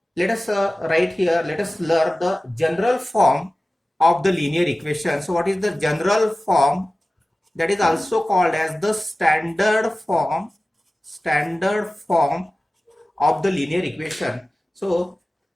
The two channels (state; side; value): normal; both; correlation 0.96